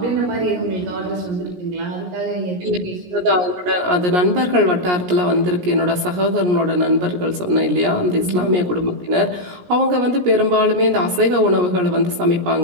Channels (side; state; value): left; late; 17 ms